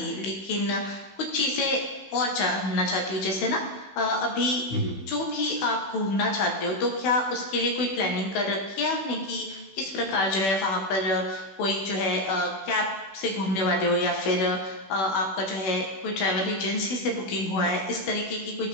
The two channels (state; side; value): late; right; 16 ms